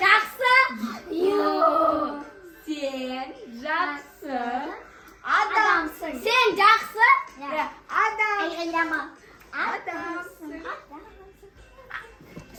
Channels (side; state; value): both; identical; correlation 1.00